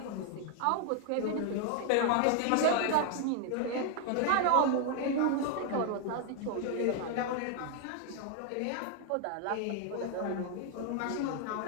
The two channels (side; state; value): both; different; correlation 0.00